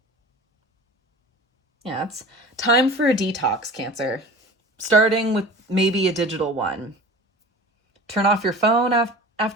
Yeah, it's time for a detox, Cancer. Starting with maybe a digital one. Turn off your phone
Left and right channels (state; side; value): normal; both; correlation 0.38